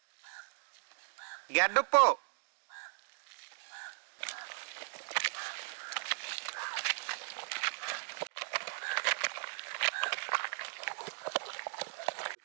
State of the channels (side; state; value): left; silent; digital silence